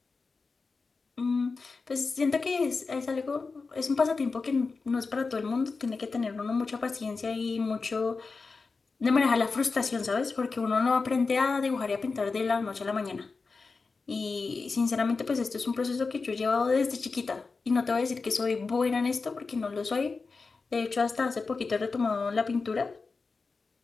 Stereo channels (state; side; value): quieter; right; 4.3 dB